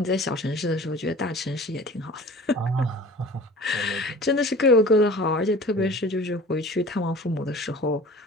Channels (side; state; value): both; normal; correlation 0.42